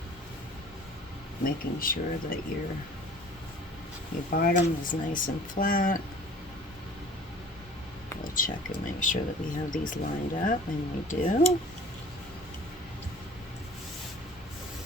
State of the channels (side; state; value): both; normal; correlation 0.47